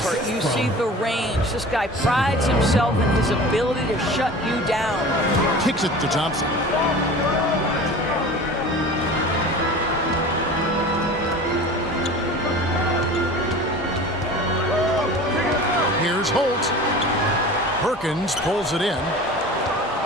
you see the range. This guy prides himself in his ability to shut you down. Kicks it to Thompson. Here's Holt. Perkins pulls it in.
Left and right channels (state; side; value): normal; both; correlation 0.38